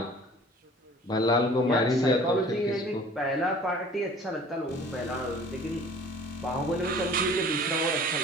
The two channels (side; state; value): both; normal; correlation 0.48